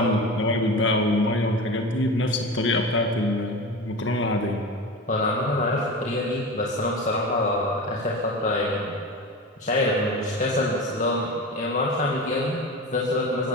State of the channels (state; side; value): normal; both; correlation 0.28